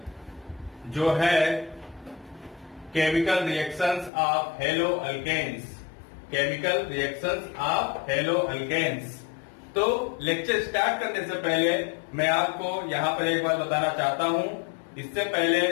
जो है chemical reactions of hello alkanes. Chemical reactions of hello alkanes. तो लेक्चर स्टार्ट करने से पहले मैं आपको यहां पर एक बात बताना चाहता हूं। इससे पहले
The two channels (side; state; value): right; drops out; at 4.1 s